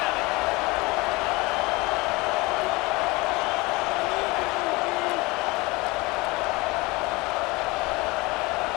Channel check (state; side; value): quieter; right; 23.6 dB